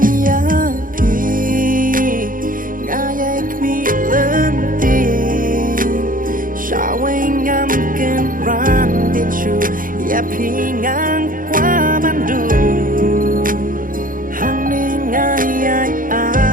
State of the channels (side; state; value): left; late; 0.40 ms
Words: yapi Ngayai kmi lenting Syawai ngam ken rang dichu Yapi ngang kwa bandu